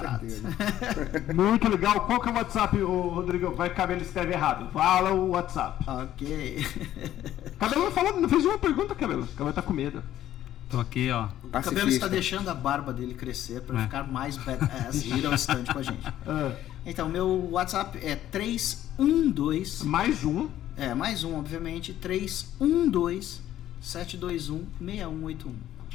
Muito legal. Qual que é o WhatsApp, Rodrigo? Vai que o Cabelo escreve errado. Fala o WhatsApp. Ok. Cabelo não fez uma pergunta, Cabelo. O Cabelo tá com medo. Tô aqui, ó. O Cabelo está deixando a barba dele crescer para ficar mais badass e ir ao stand com a gente. Então, meu WhatsApp é 312... Mais um. Mais um, obviamente. 312-721-6181.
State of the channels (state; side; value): quieter; right; 12.5 dB